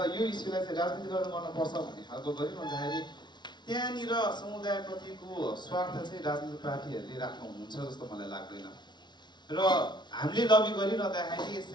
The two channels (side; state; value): right; late; 0.21 ms